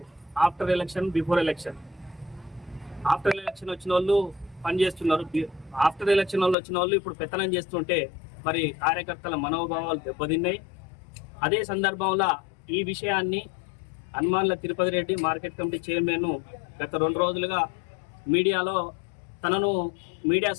ఆఫ్టర్ ఎలక్షన్ బిఫోర్ ఎలక్షన్ వచ్చిన వాళ్ళు పనిచేస్తున్నారు. ఆఫ్టర్ ఎలక్షన్ వాళ్ళు వచ్చిన వాళ్ళు ఇప్పుడు పెత్తనం చేస్తుంటే మరి కార్యకర్తల మనోభావాలు దెబ్బతిన్నాయి. అదే సందర్భంలో ఈ విషయాన్ని హనుమాన్ల Tirupati Reddy market committee chairman గత 2 రోజులుగా మీడియాలో తనను మీడియా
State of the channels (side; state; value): right; drops out; at 6.6 s